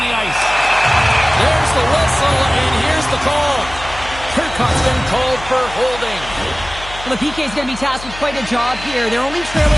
ice. There's the whistle, and here's the call. Turcotte's been called for holding. Well, the PK is going to be tasked with quite a job here. They're only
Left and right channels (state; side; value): noise; left; hum, 14 dB below the sound